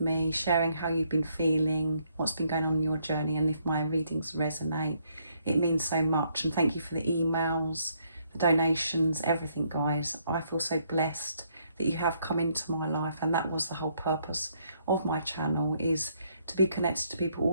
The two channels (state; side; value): inverted; both; correlation -0.71